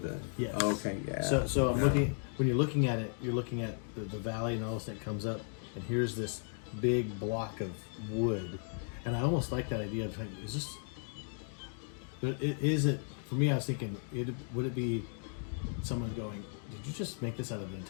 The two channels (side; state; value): right; silent; 54 dB below the other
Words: the. Yes. Okay. Yeah. So I'm Yeah. looking, when you're looking at it, you're looking at the valley, and all of a sudden it comes up, and here's this big block of wood. And I almost like that idea of, like, is this, but is it, for me, I was thinking, would it be someone going, did you just make this out of an